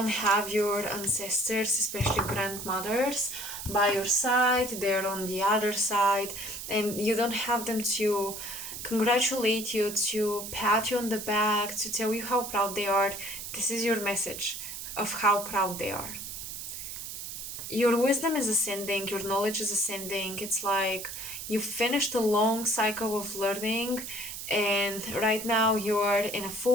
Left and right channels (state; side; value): noise; right; hiss, 8 dB below the sound